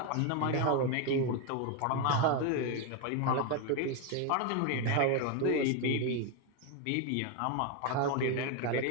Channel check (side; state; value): both; different; correlation 0.01